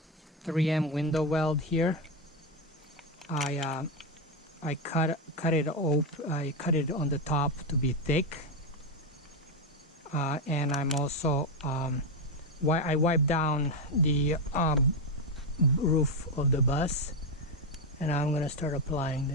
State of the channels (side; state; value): both; normal; correlation 0.08